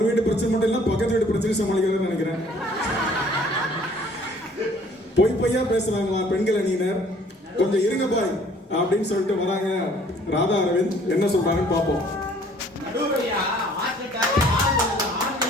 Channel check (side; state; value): both; normal; correlation 0.57